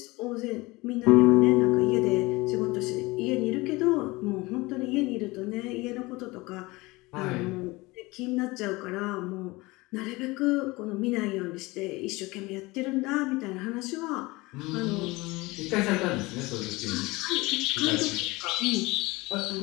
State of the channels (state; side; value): quieter; right; 22.4 dB